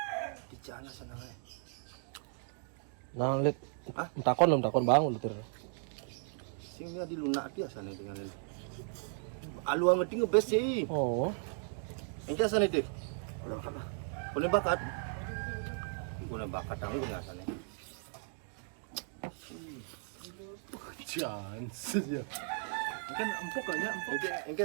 Bicara sana. Nah, lihat. Hah? Takon bang, udah Singnya di lunak biasa nih dengan ini. Alu ang ngerti ngebes sih. Oh. Engke asane deh. Udah kan lah. Punya bakat. Punya bakat tanggung asane. Chance ya. Kan empuk kayaknya empuk. Engke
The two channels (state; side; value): silent; left; 54 dB below the other